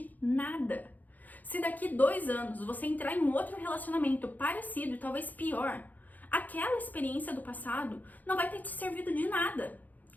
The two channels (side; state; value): right; late; 0.082 ms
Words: nada. Se daqui 2 anos você entrar em um outro relacionamento parecido e talvez pior, aquela experiência do passado não vai ter te servido de nada.